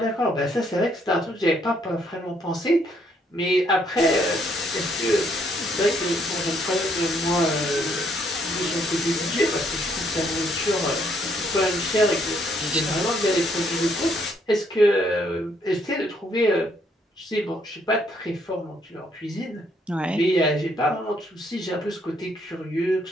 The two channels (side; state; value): both; normal; correlation 0.70